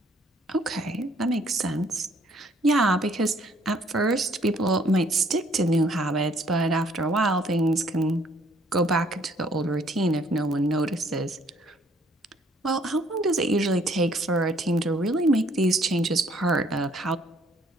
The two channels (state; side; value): normal; both; correlation 0.63